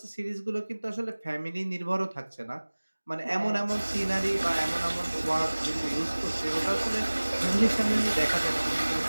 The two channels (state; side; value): inverted; both; correlation -1.00